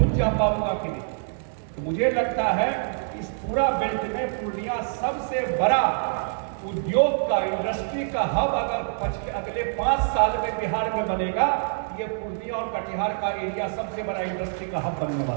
जा पाऊंगा कि नहीं। तो मुझे लगता है इस पूरा बेल्ट में पूर्णिया सबसे बड़ा उद्योग का, इंडस्ट्री का हब अगर अगले 5 साल में बिहार में बनेगा, ये पूर्णिया और कटिहार का एरिया सबसे बड़ा इंडस्ट्री का हब बनने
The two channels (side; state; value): left; silent; digital silence